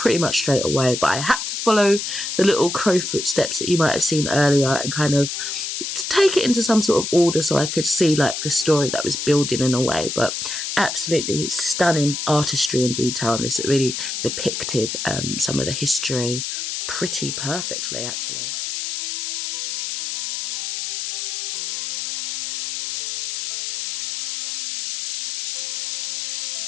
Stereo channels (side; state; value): left; noise; hiss, 3 dB below the sound